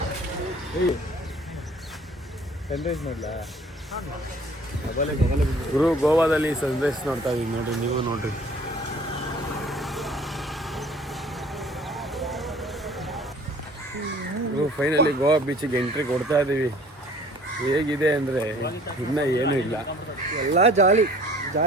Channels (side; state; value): both; normal; correlation 0.52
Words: ಸನ್ರೈಸ್ ನೋಡ್ಲಾ ಗುರು ಗೋವಾದಲ್ಲಿ ಸನ್ರೈಸ್ ನೋಡ್ತಾ ಇದೀವಿ ನೋಡಿ ನೀವು ನೋಡ್ರಿ ಫೈನಲಿ ಗೋವಾ ಬೀಚಿಗೆ ಎಂಟ್ರಿ ಕೊಡ್ತಾ ಇದೀವಿ ಹೇಗಿದೆ ಅಂದ್ರೆ ಇನ್ನ ಏನು ಇಲ್ಲ ಎಲ್ಲ ಜಾಲಿ